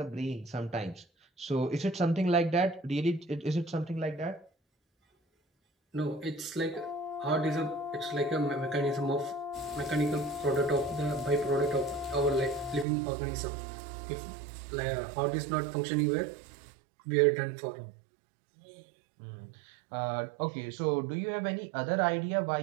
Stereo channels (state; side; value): drops out; left; at 12.9 s